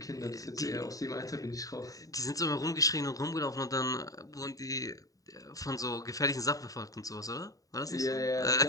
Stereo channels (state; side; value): late; right; 0.17 ms